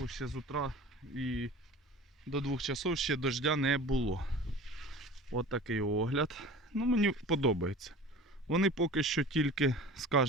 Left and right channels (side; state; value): both; normal; correlation 0.40